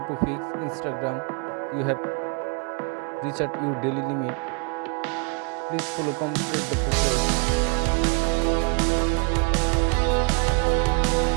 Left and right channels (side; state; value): left; quieter; 34.4 dB